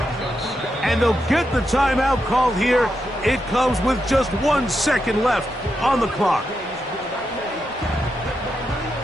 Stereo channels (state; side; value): normal; both; correlation 0.85